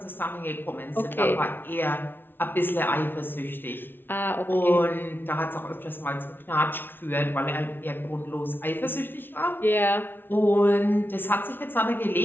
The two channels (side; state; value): right; late; 0.10 ms